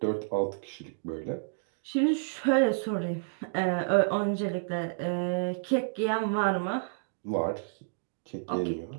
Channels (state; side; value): silent; left; digital silence